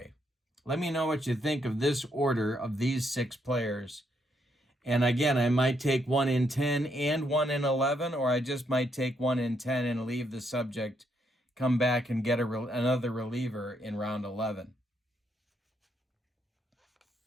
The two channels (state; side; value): normal; both; correlation 0.75